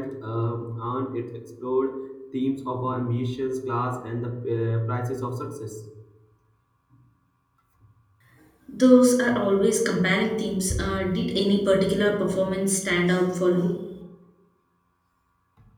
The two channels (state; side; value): identical; both; correlation 1.00